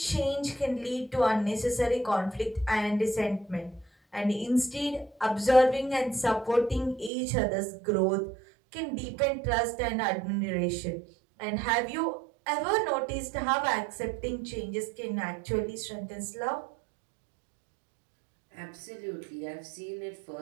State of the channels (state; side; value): drops out; left; at 7.1 s